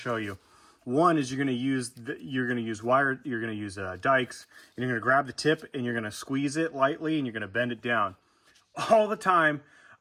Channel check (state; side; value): identical; both; correlation 1.00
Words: show you. One is you're going to use dikes, and you're going to grab the tip and you're going to squeeze it lightly and you're going to bend it down. All the time,